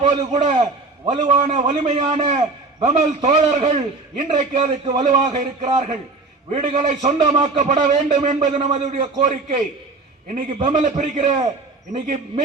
போது கூட வலுவான, வலிமையான பெமல் தோழர்கள் இன்றைக்கு அதுக்கு வலுவாக இருக்கிறார்கள். வீடுகளை சொந்தமாக்கப்பட வேண்டும் என்பது நமது கோரிக்கை. இன்னைக்கு பெமல பிரிக்கிற, இன்னைக்கு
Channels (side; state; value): left; quieter; 3.6 dB